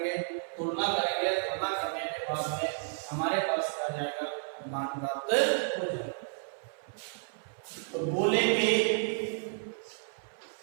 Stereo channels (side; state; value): left; silent; 56 dB below the other